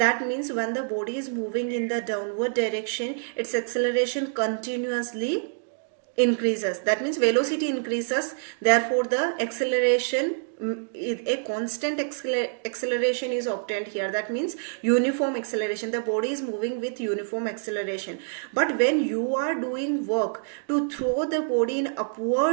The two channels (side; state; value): left; silent; digital silence